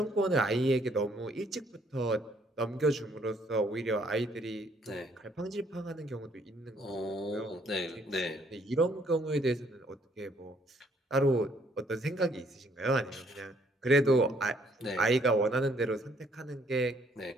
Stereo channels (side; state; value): both; normal; correlation 0.66